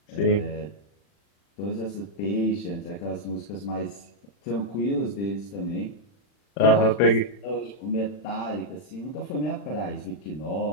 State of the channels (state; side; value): late; right; 40 ms